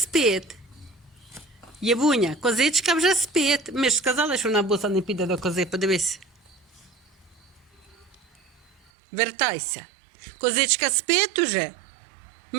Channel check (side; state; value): left; drops out; at 8.8 s